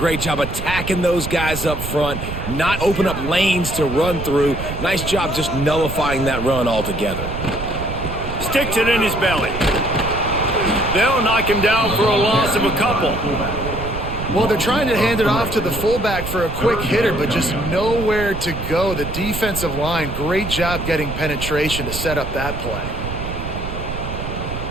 job attacking those guys up front, not open up lanes to run through. Nice job just nullifying that run altogether. Sticks it in his belly. They'll knock him down for a loss of a couple. Well, they're trying to hand it off to the fullback for a quick hitter, but just nowhere to go. The defensive line, great job getting penetration to set up that play.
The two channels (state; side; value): noise; right; rumble, 7 dB below the sound